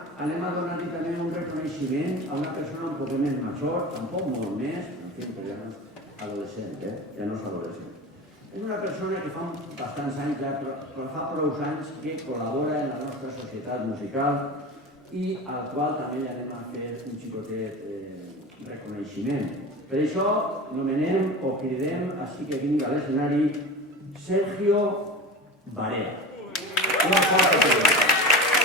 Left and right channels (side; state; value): both; normal; correlation 0.30